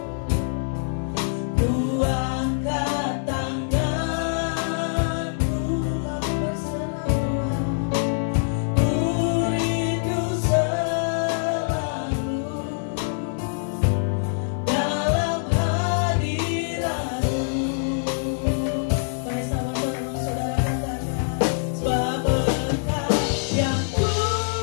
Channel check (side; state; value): right; silent; digital silence